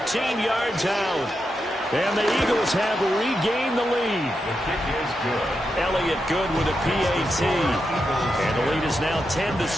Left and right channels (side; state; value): both; normal; correlation 0.86